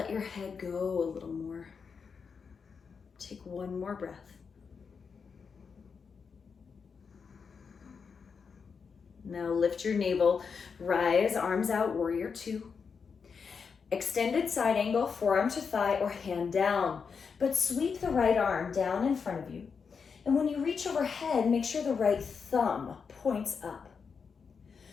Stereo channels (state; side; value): quieter; right; 5.8 dB